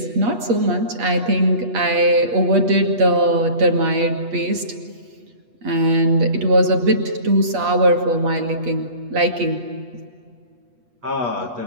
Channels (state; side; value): late; left; 8.3 ms